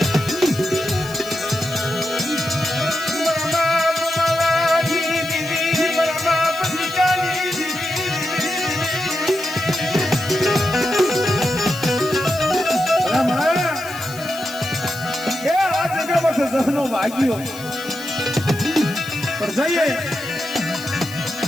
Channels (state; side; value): noise; left; hiss, 16 dB below the sound